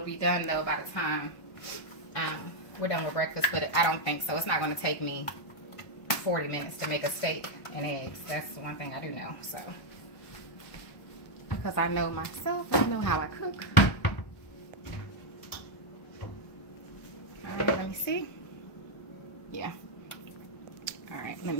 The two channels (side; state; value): right; late; 1.1 ms